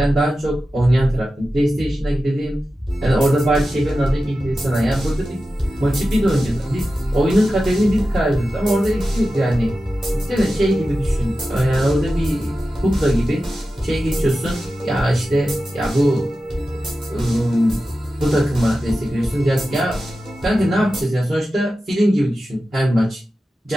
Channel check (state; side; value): normal; both; correlation 0.93